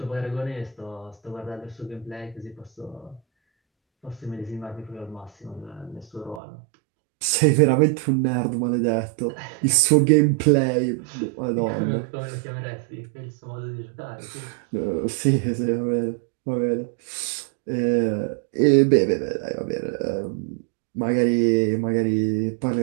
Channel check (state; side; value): drops out; left; at 6.4 s